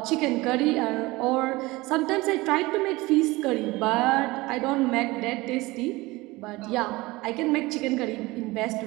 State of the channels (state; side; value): quieter; left; 21.2 dB